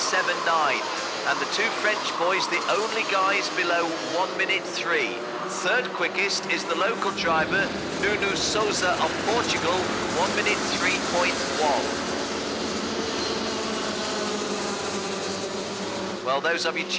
And the two French boys, the only guys below 1 minute 3. Third quickest is the local driver, Nuno Souza of Portugal, 1 minute 3.1. Well, those of you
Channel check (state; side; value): identical; both; correlation 1.00